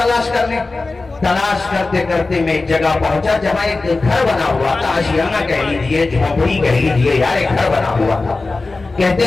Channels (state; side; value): quieter; right; 3.5 dB